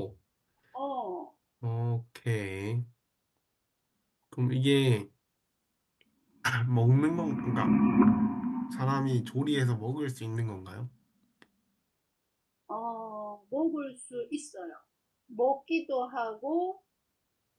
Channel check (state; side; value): identical; both; correlation 1.00